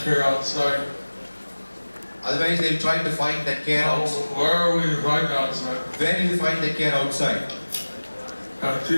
outside, Otherwise they'll try to find that care outside. where will you find outside? Where do you find the care outside? And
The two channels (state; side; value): inverted; both; correlation -1.00